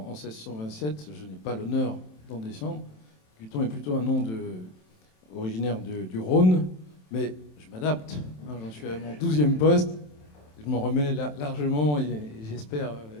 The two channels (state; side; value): late; right; 27 ms